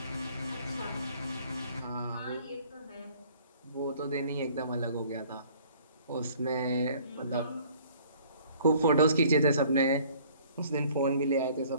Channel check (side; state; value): both; inverted; correlation -0.55